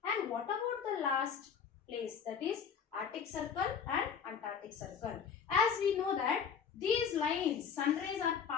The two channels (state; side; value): quieter; right; 7.0 dB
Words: And what about the last place, that is Arctic Circle and Antarctic Circle? As we know that these lines, sun rays are